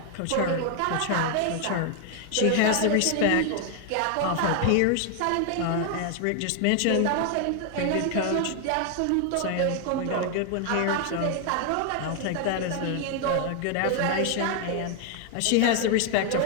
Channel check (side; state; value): both; different; correlation 0.00